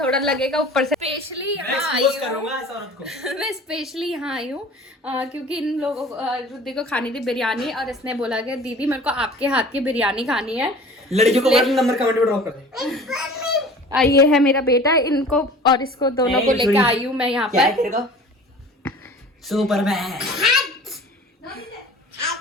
लगेगा ऊपर से। स्पेशली यहाँ आई हूँ, करूंगा इस औरत को। मैं स्पेशली यहाँ आई हूँ क्योंकि इन लोगों को, रुद्दी को खानी थी बिरयानी, और इसने बोला कि दीदी मेरे को आपके हाथ की बिरयानी खानी है। लड़कियों को नंबर कमेंट में ड्रॉप कर दे। ये है मेरा बेटा, इनको और इसको दोनों को लेके आई हूँ मैं यहाँ पर। सुपरमैन।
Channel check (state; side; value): normal; both; correlation 0.43